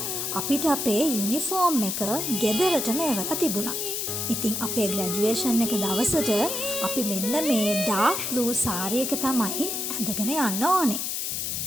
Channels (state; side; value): noise; left; hiss, 2 dB below the sound